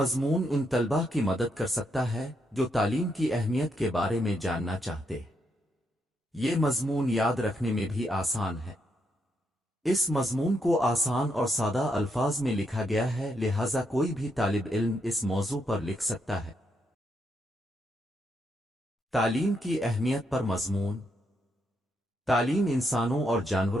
ان طلباء کی مدد کر سکتا ہے جو تعلیم کی اہمیت کے بارے میں جاننا چاہتے ہیں۔ یہ مضمون یاد رکھنے میں بھی آسان ہے۔ اس مضمون کو آسان اور سادہ الفاظ میں لکھا گیا ہے، لہذا کوئی بھی طالب علم اس موضوع پر لکھ سکتا ہے۔ تعلیم کی اہمیت پر مضمون۔ تعلیم انسانوں اور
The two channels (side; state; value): both; normal; correlation 0.79